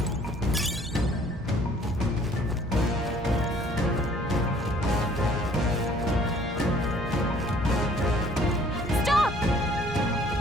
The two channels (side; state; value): both; normal; correlation 0.57